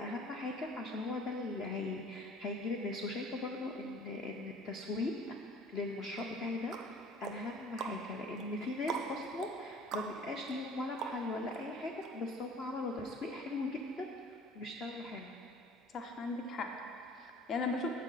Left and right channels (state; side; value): normal; both; correlation 0.48